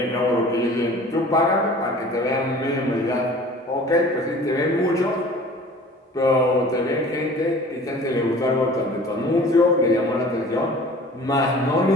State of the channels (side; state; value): both; normal; correlation 0.45